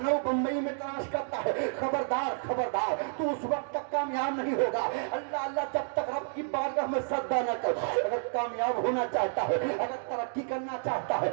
بمبئی میں تلاش کرتا ہے خبردار خبردار تو اس وقت تک کامیاب نہیں ہوگا اللہ اللہ جب تک رب کی بارگاہ میں سجدہ نہ کر اگر کامیاب ہونا چاہتا ہے اگر ترقی کرنا چاہتا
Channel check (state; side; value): silent; left; digital silence